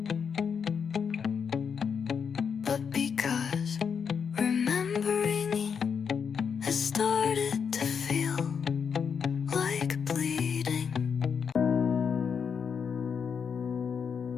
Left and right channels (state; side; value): quieter; right; 6.6 dB